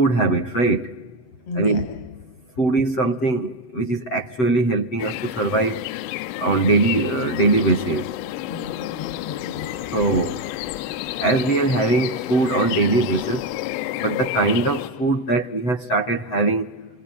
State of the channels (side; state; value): right; late; 7.9 ms